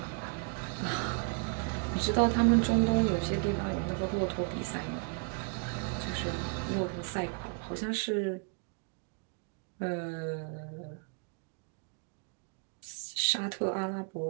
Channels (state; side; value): quieter; left; 35.7 dB